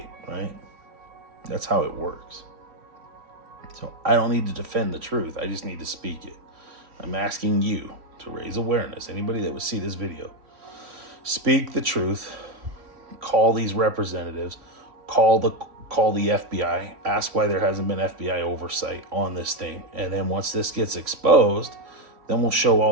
right? That's how it works. So I don't need to defend the truth. I just need to speak it. I'm asking you to raise awareness. Anybody that would see this video, speak the truth. Call these representatives. Call the FBI. Ask why there hasn't been FBI oversight on this thing. And then once this gets exposed, then we'll show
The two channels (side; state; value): left; late; 3.5 ms